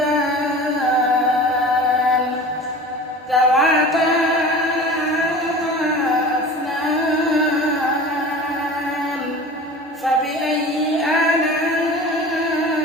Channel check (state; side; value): normal; both; correlation 0.37